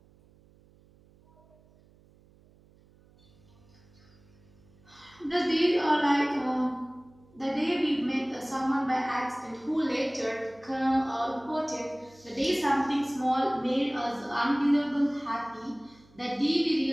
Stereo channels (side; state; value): right; noise; hum, 28 dB below the sound